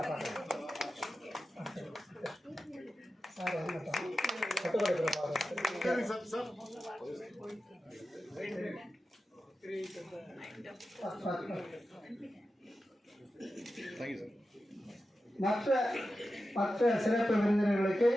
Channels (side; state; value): both; normal; correlation 0.92